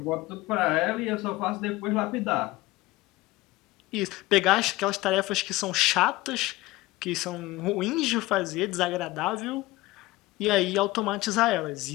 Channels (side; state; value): right; quieter; 19.2 dB